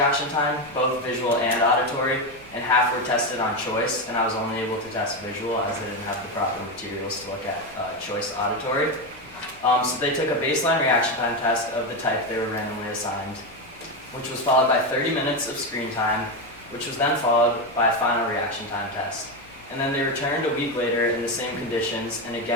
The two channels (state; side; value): normal; both; correlation 0.12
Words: time, both visual and auditory, and half were tested on choice, and I was only able to test visual as I didn't have the proper materials to look at choice auditory. So they took a baseline reaction time test of the type they were randomly assigned, which was followed by 30 minutes of screen time, which was then followed by a final reaction time test. And then they returned a week later in the same conditions and